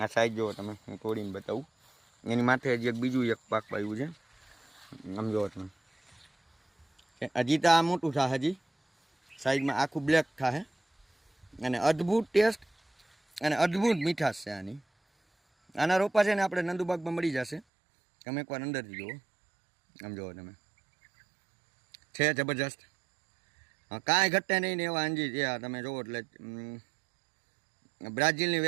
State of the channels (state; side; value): drops out; left; at 17.6 s